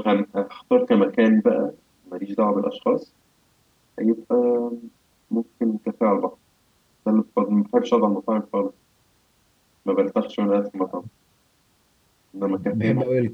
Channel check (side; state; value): both; identical; correlation 1.00